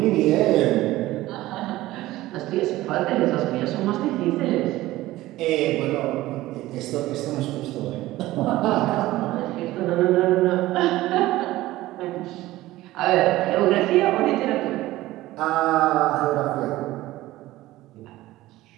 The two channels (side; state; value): left; quieter; 16.9 dB